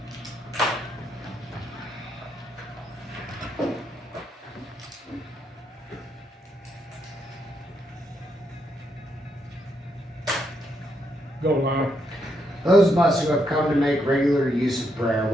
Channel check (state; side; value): normal; both; correlation 0.78